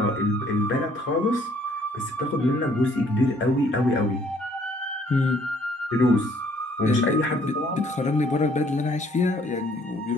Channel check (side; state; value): both; normal; correlation 0.62